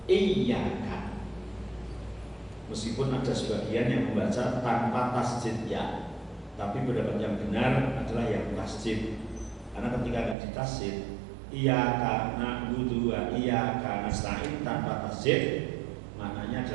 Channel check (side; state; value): left; drops out; at 10.4 s